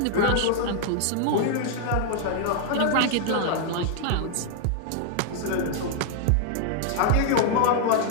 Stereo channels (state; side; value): different; both; correlation 0.00